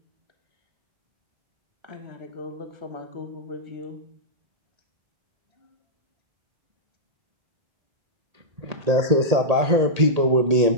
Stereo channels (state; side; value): late; left; 1.8 ms